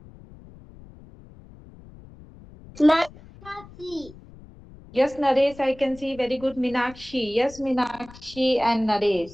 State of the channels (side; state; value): left; noise; rumble, 20 dB below the sound